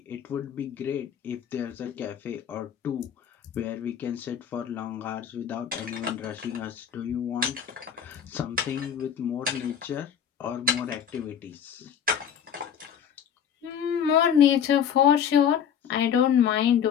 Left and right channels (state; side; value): quieter; right; 8.3 dB